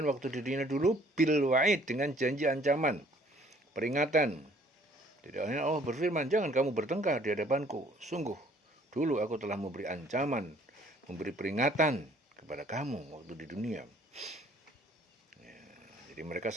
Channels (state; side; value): normal; both; correlation 0.59